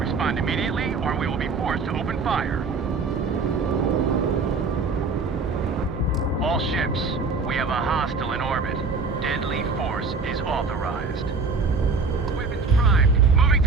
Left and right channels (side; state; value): left; quieter; 4.4 dB